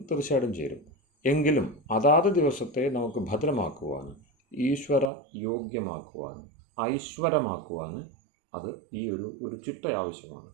തീർച്ചയായിട്ടും ചേരും. എങ്കിലും അതാത് ദിവസത്തെ നമുക്ക് ഭദ്രമാക്കുവാൻ, ഈശ്വര യോഗ്യമാക്കുവാൻ, ഐശ്വര്യമാക്കുവാൻ അത് ഈ ഒരു ചിട്ട ആവശ്യമാണ്.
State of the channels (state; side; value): drops out; left; at 5.1 s